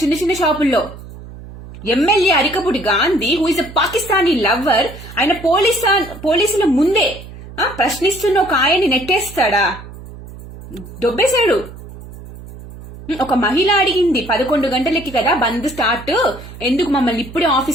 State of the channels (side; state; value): right; noise; hum, 15 dB below the sound